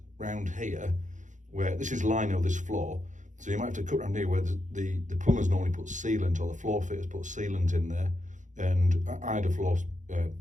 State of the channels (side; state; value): left; late; 0.36 ms